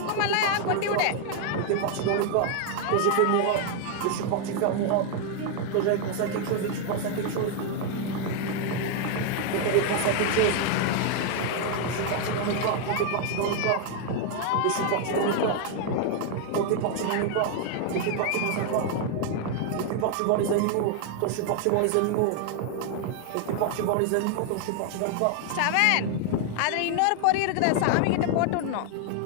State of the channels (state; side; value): different; both; correlation 0.00